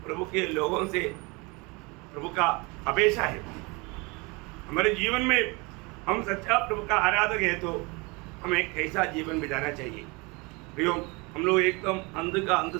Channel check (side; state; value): left; quieter; 27.3 dB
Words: के लोगों से प्रभु का अपेक्षा है। हमारे जीवन में हम सच्चा प्रभु का आराधक है तो हमें कैसा जीवन बिताना चाहिए। प्रियो, हम लोग एकदम अंध का अंत